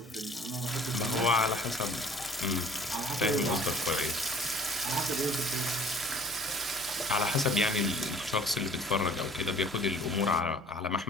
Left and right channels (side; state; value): both; normal; correlation 0.50